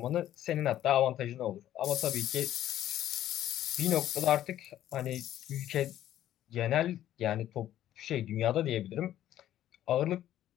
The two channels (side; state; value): right; quieter; 12.4 dB